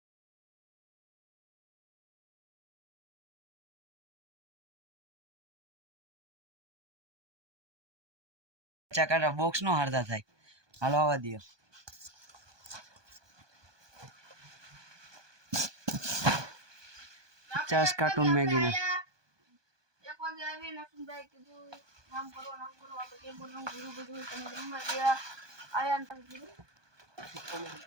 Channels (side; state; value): left; late; 1.2 ms